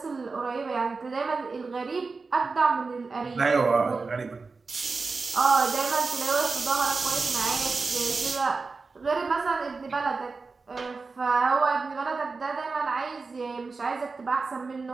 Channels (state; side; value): quieter; left; 4.2 dB